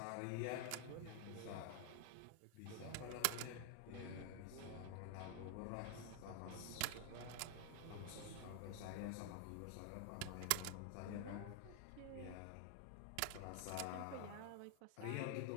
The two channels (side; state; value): both; different; correlation 0.00